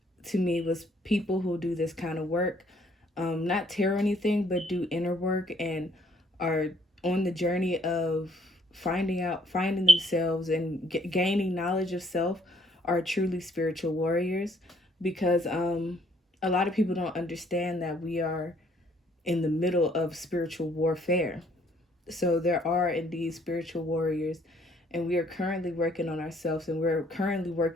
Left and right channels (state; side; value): normal; both; correlation 0.64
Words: to me was people who do this kind of work, not tarot anything, but do inner work and are on the journey of finding themselves and gaining knowledge of self are truly spiritual warriors because a lot of people don't understand that we are in the middle of spiritual warfare. So there are indeed spiritual warriors, and we are currently working on ourselves, and we're currently